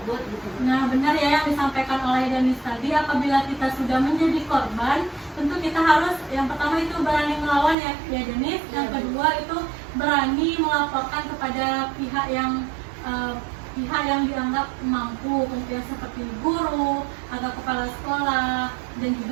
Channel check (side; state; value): left; drops out; at 7.8 s